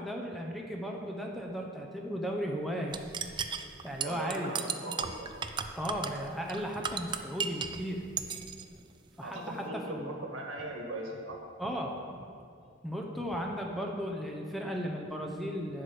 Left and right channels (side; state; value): both; normal; correlation 0.47